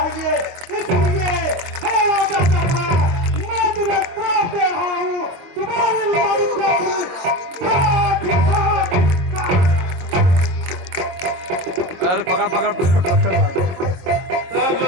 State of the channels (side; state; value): left; late; 22 ms